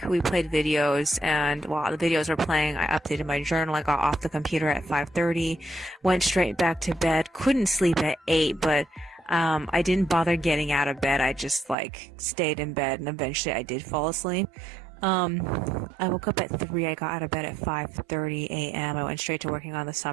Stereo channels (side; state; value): left; drops out; at 11.8 s